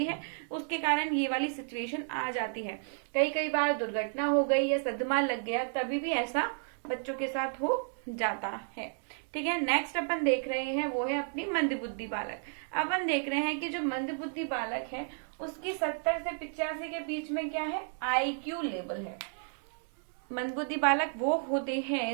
है, उसके कारण ये वाली सिचुएशन आ जाती है। कई बार दुर्घटना हो गई या सदमा लग गया, तभी भी ऐसा बच्चों के साथ हो जाता है। ठीक है, नेक्स्ट अपन देख रहे हैं वो है अपनी मंदबुद्धि बालक। अपन देख रहे हैं कि जो मंदबुद्धि बालक है उसकी 70 से 85 के बीच में क्या है, आईक्यू लेवल है। मंदबुद्धि बालक वो होते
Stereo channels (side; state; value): left; silent; digital silence